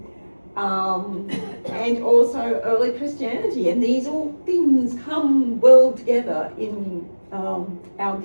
also early Christianity, and these all things come well together in our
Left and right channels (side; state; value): both; inverted; correlation -1.00